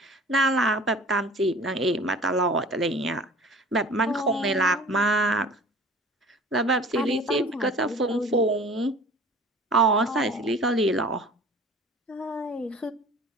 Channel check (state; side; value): normal; both; correlation 0.45